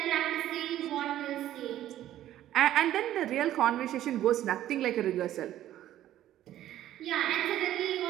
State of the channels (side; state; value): left; quieter; 12.9 dB